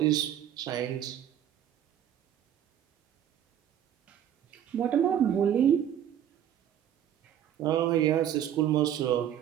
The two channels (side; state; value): left; quieter; 10.3 dB